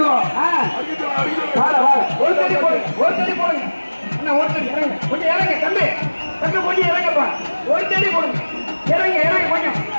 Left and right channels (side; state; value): both; inverted; correlation -1.00